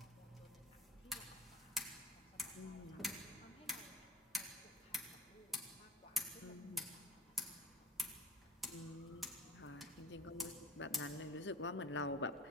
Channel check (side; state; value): both; normal; correlation 0.39